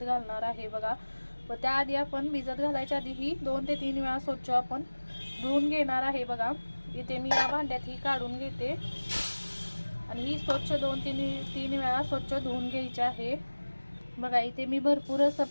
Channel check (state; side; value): inverted; both; correlation -1.00